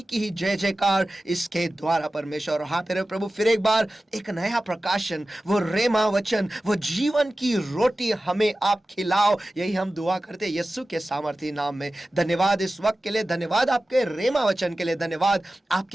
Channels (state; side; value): normal; both; correlation 0.95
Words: की ही जय जयकार इसके द्वारा परमेश्वर। और हाँ तेरे प्रभु, फिर एक बार एक नया प्रकाशन, वो रेमा वचन, वो जीवन की रोटी हमें आप खिलाओ, यही हम दुआ करते हैं यीशु के सामर्थ्य नाम में। धन्यवाद इस वक्त के लिए, धन्यवाद आपके रेमा वचन के लिए, धन्यवाद